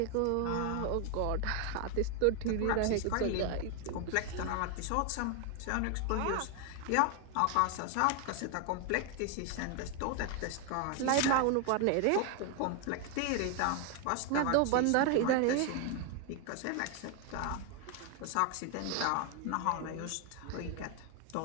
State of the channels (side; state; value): both; different; correlation 0.01